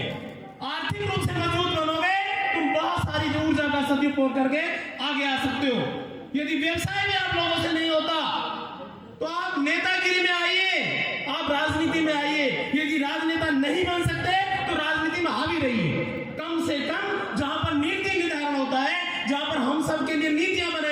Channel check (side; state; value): both; identical; correlation 1.00